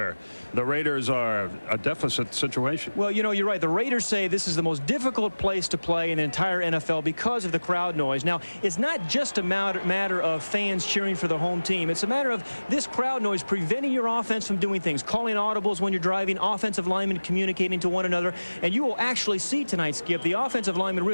the Raiders are a deficit situation. Well, you know, you're right. The Raiders say this is the most difficult place to play in the entire NFL because of the crowd noise. Now, it's not just a matter of fans cheering for the home team. It's a matter of this crowd noise preventing your offense from doing things, calling audibles when you're driving, offensive linemen communicating to one another. And you will actually see tonight, Skip, the offensive lineman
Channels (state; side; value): inverted; both; correlation -1.00